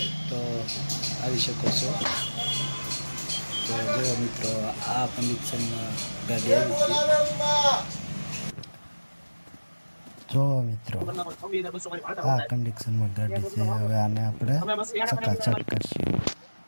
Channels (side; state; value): both; inverted; correlation -1.00